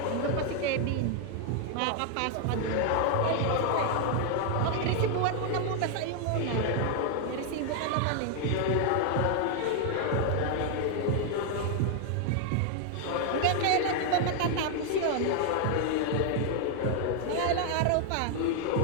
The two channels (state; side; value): different; both; correlation 0.00